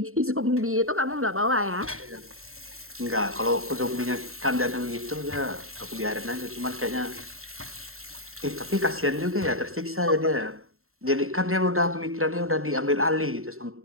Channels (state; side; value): late; left; 0.62 ms